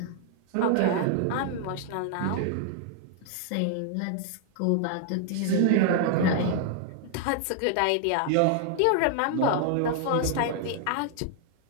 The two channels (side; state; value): both; different; correlation 0.00